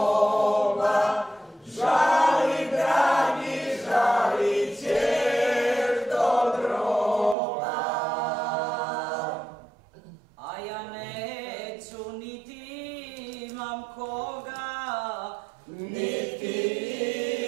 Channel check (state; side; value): drops out; left; at 7.4 s